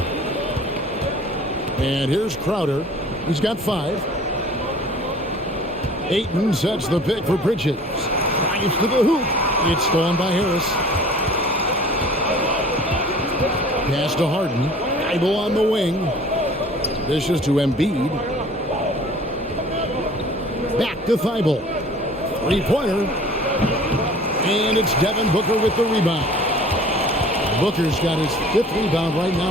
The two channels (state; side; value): normal; both; correlation 0.47